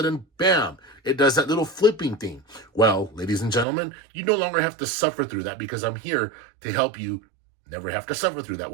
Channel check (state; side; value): drops out; left; at 3.7 s